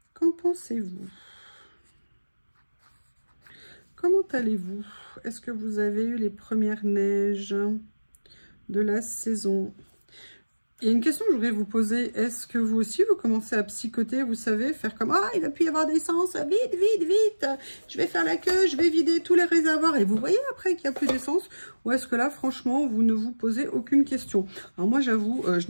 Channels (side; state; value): both; inverted; correlation -1.00